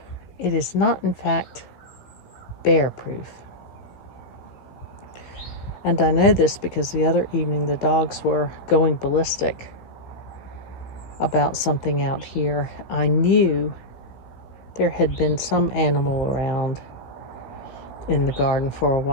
it is not in fact bear proof. And I know this because the other evening the dogs were going ballistic about something out here. I knew there had been some animal around in the garden for a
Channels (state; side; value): late; right; 16 ms